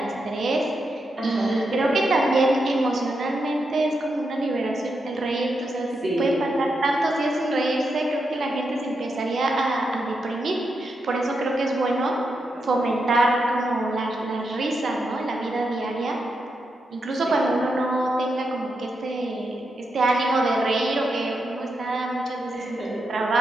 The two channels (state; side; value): normal; both; correlation 0.85